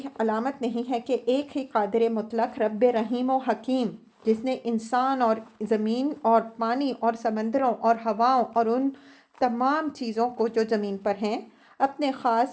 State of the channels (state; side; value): identical; both; correlation 1.00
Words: علامت نہیں ہے کہ ایک ہی قادر مطلق رب رحیم و حکیم، جس نے انسان اور زمین اور پانی اور سمندروں اور ہواؤں اور ان تمام چیزوں کو جو زمین پر ہیں اپنے